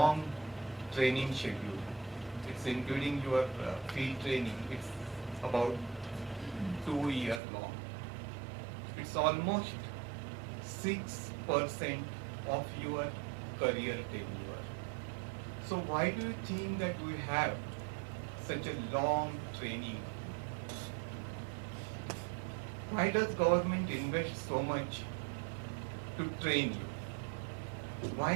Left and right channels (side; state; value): left; drops out; at 7.4 s